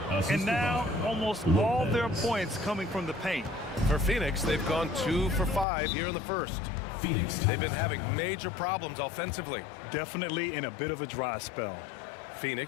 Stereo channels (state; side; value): drops out; right; at 5.7 s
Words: And now almost all their points coming from the paint. For Phoenix, they've gone 2 for 5 here in the first. Phoenix. They've been having major problems offensively. Definitely in a bit of a dry spell.